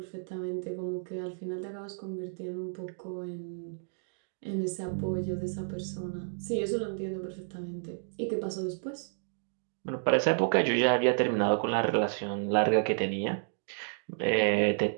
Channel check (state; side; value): silent; left; digital silence